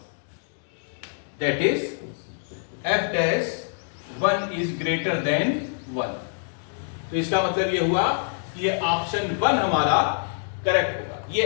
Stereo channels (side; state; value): right; silent; digital silence